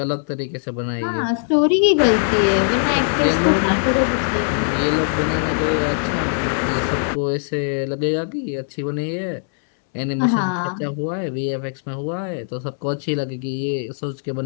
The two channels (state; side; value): silent; right; 65 dB below the other